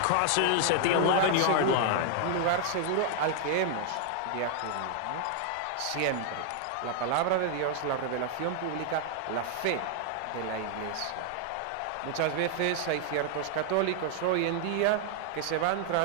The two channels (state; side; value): different; both; correlation 0.00